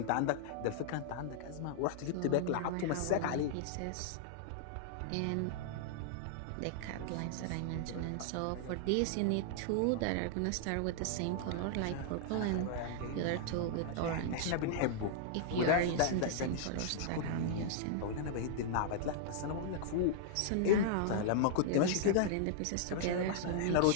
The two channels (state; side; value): different; both; correlation -0.01